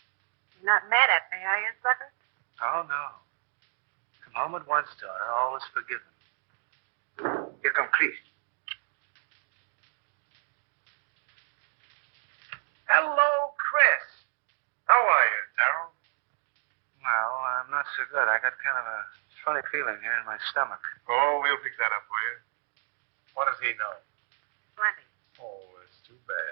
You're not mad at me, are you, sucker? Oh, no. Come home at once, daughter. All is forgiven. Here come Chris. Hello, Chris. How are you, Darrell? Well, I'm not so good. I got kind of a funny feeling here in my stomach. Oh, we'll fix that up for you. What does he know? Plenty. Oh, it's too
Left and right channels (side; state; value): left; silent; 57 dB below the other